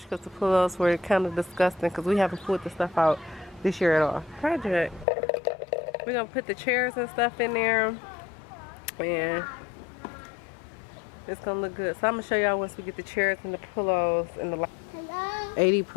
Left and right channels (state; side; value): drops out; right; at 5.1 s